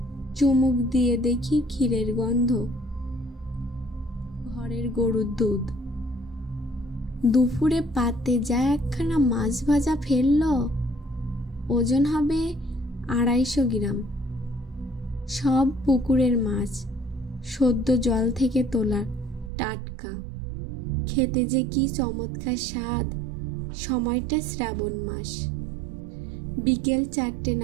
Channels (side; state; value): left; drops out; at 19.5 s